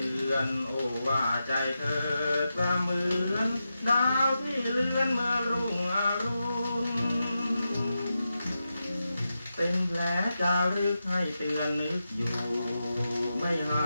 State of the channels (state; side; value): inverted; both; correlation -0.89